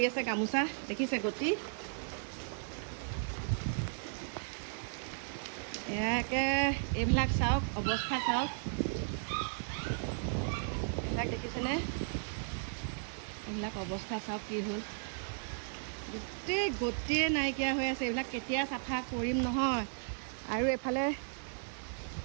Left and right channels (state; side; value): silent; left; digital silence